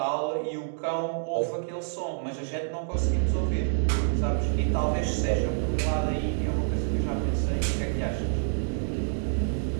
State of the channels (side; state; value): left; silent; digital silence